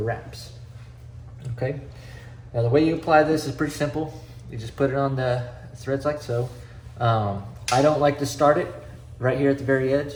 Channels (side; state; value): both; identical; correlation 1.00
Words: Okay. Now the way you apply this is pretty simple. You just put it on the threads like so. I don't like to start it right here at the very edge.